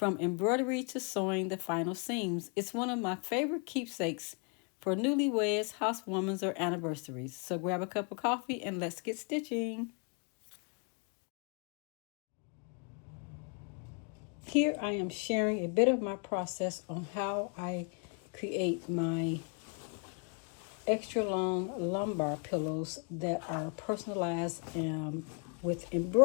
embroidery to sewing the final seams. It's one of my favorite keepsakes for newlyweds, housewarmings, or anniversaries. So grab a cup of coffee and let's get stitching. Here I am sharing a bit of my process on how I create my extra long lumbar pillows that are personalized with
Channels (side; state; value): right; quieter; 38.5 dB